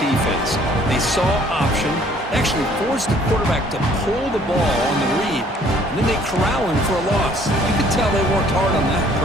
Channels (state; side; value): normal; both; correlation 0.59